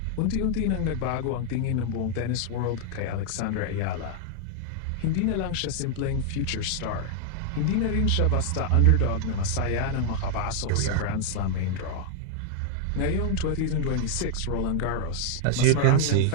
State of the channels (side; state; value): both; different; correlation -0.01